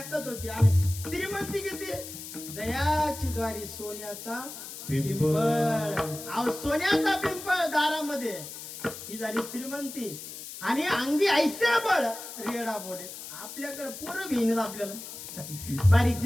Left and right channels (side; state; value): left; noise; hiss, 11 dB below the sound